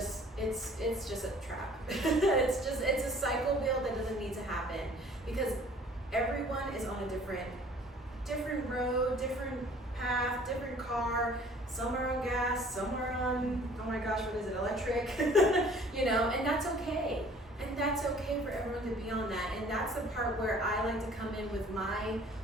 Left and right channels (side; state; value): both; normal; correlation 0.52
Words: a trap. it's a cycle wheel that doesn't need to happen, because everyone is on a different road, different path, different car. Some are on gas, some are on, oh my gosh, what is it, electric? You know, and that's okay. And that's okay for everyone to be on that. And that's the part where I like to come in with